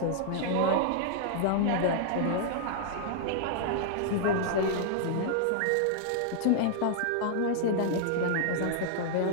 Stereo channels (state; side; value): different; both; correlation -0.01